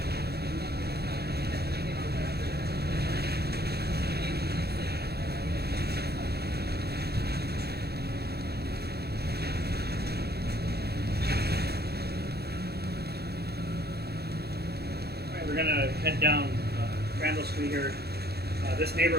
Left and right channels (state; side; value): late; left; 0.47 ms